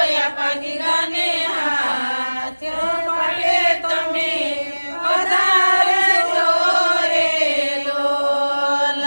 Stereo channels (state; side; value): inverted; both; correlation -1.00